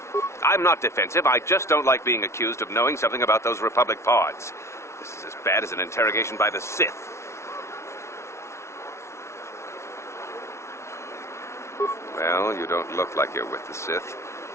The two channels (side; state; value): right; late; 0.13 ms